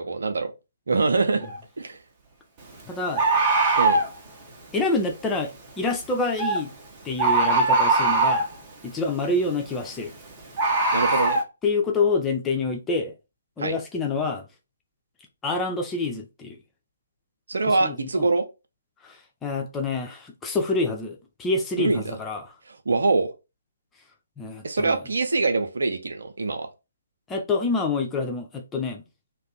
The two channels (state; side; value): inverted; both; correlation -0.43